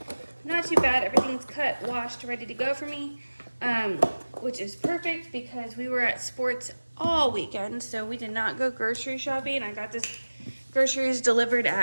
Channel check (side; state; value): both; inverted; correlation -1.00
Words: Not too bad. Everything's cut, washed, ready to go for me. Which is perfect because we were at sports all weekend, so we did not go grocery shopping. I got this groceries delivered